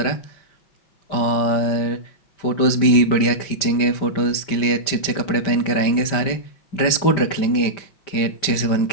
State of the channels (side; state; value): right; late; 5.2 ms